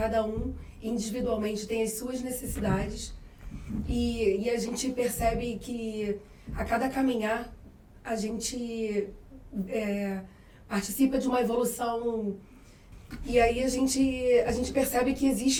um individualmente tem as suas necessidades. E a gente percebe que a cada caminhar a gente participa de uma evolução. E aí a gente percebe que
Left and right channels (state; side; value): identical; both; correlation 1.00